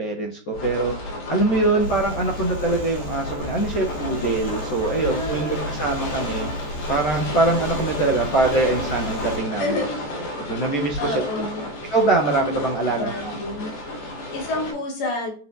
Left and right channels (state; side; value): late; right; 14 ms